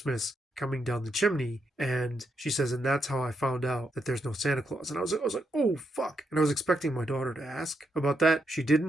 coming down the chimney, and she says, and that's how I found out that there's no Santa Claus. And I was like, oh fuck. And I was expecting my daughter to ask about that. She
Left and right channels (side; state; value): both; normal; correlation 0.80